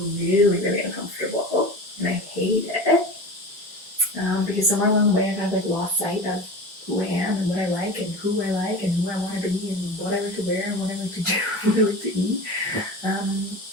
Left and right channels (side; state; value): both; normal; correlation 0.31